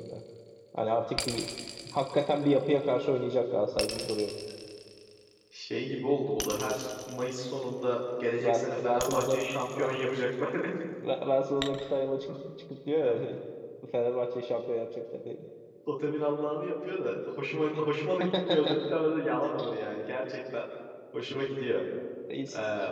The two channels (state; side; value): identical; both; correlation 1.00